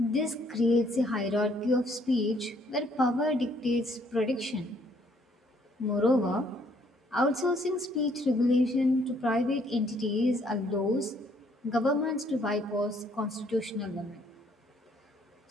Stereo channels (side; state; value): both; normal; correlation 0.66